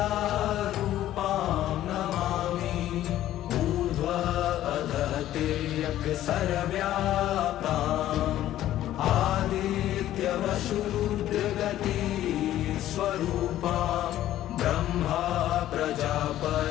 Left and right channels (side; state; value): right; quieter; 13.2 dB